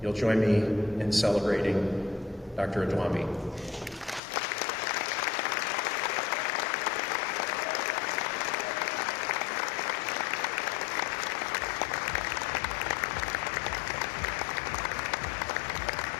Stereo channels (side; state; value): right; drops out; at 4.2 s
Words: join me in celebrating Dr. Odume.